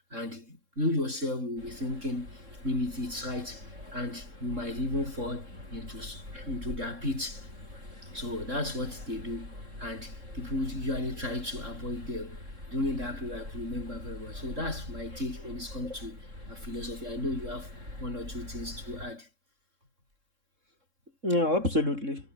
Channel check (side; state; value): left; late; 3.7 ms